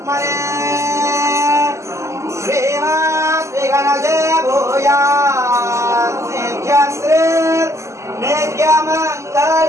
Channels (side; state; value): left; late; 0.14 ms